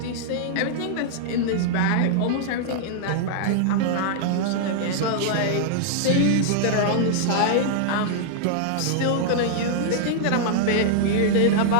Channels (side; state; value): both; different; correlation -0.01